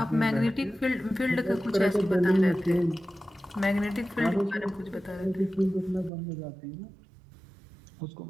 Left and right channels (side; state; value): left; drops out; at 6.1 s